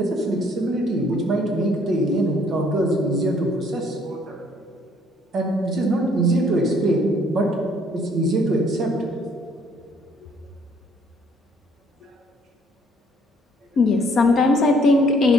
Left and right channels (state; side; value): normal; both; correlation 0.62